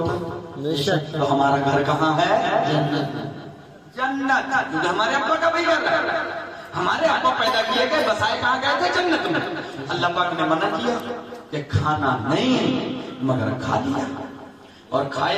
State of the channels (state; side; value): identical; both; correlation 1.00